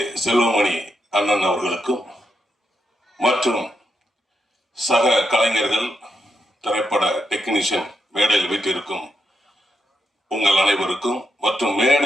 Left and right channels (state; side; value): normal; both; correlation 0.83